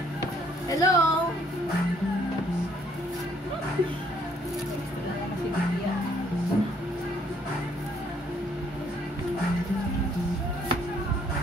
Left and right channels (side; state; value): both; normal; correlation 0.65